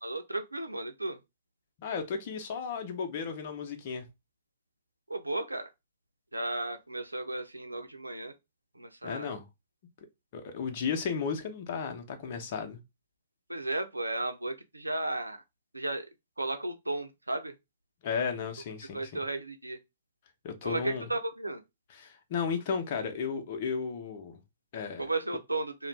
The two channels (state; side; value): inverted; both; correlation -0.67